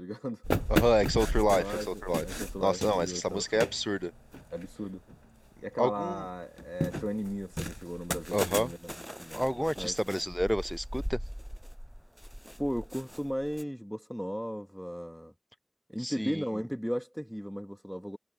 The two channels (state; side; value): identical; both; correlation 1.00